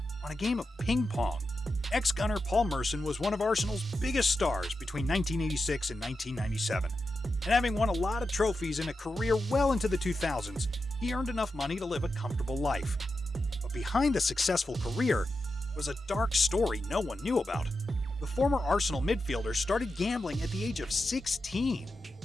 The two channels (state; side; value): normal; both; correlation 0.89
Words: on a game of ping pong. Ex-gunner Paul Merson was one of Arsenal's biggest stars between 1986 and 1997. And having won a lot of trophies in a career well into the 2000s, he earned enough money to live a comfortable life. But behind the successful career was a dark story no one knew about. The former Arsenal midfielder started gambling at the age of 16,